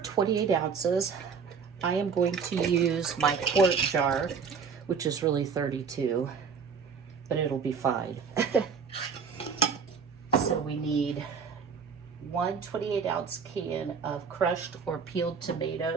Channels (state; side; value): quieter; left; 5.9 dB